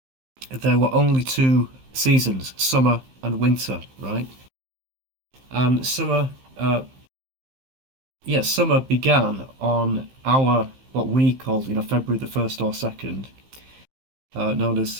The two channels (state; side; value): late; left; 15 ms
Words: there were only two seasons, summer and winter, right? And summer began on our, what we called, February the 1st or 2nd, known as,